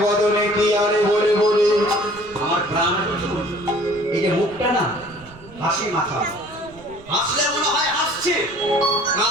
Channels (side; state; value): right; noise; rumble, 22 dB below the sound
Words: বদনে কি আনে বলে বলে আমার প্রাণ এই যে মুখটা না হাসি মাখা, হাসলে মনে হয় হাসছে,